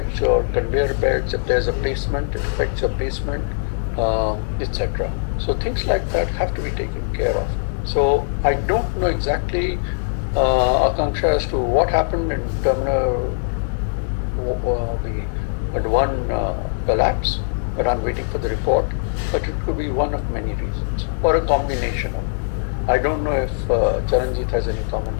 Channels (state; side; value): silent; right; digital silence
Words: your conveyor belts. If there's a basement, it affects your basement, etc. So things like that have to be taken care of. So I don't know exactly, Akanksha, as to what happened in terminal the one collapse, but I'm waiting for the report. But it could be one of many reasons, or a combination of. I don't know if Charanjit has any